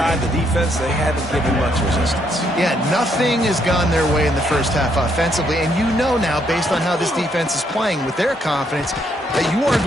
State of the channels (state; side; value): normal; both; correlation 0.73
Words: the defense, they haven't given much resistance. Yeah, nothing has gone their way in the first half offensively. And you know now, based on how this defense is playing with their confidence, that you are